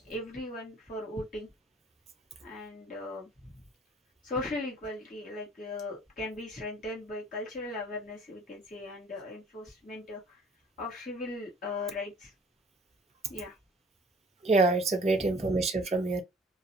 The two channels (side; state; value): both; normal; correlation 0.53